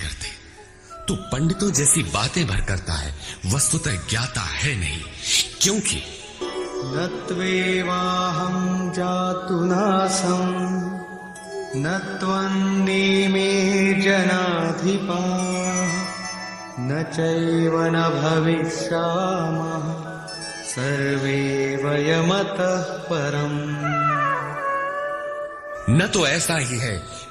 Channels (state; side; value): identical; both; correlation 1.00